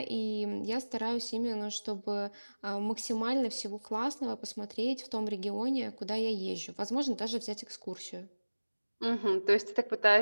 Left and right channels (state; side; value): inverted; both; correlation -1.00